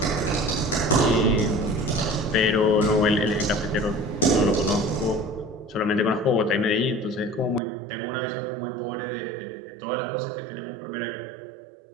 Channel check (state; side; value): drops out; left; at 7.6 s